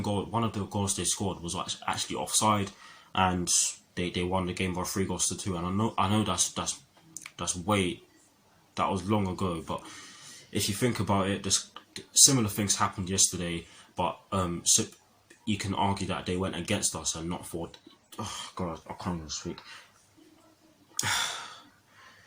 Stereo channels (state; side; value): identical; both; correlation 1.00